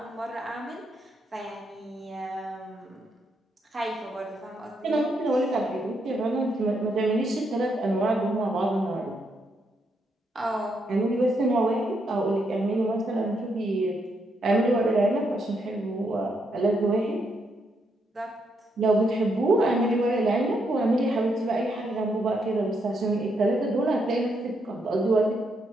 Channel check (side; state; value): both; normal; correlation 0.78